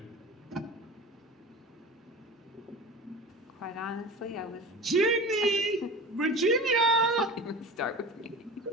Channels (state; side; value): normal; both; correlation 0.34